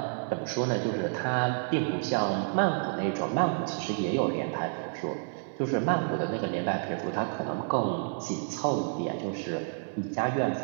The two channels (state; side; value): silent; left; digital silence